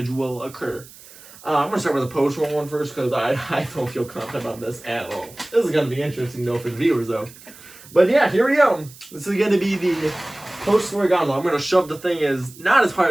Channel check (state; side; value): noise; right; hiss, 20 dB below the sound